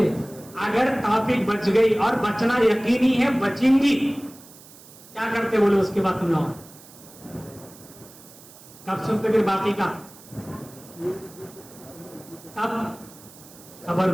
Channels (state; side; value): noise; right; hiss, 21 dB below the sound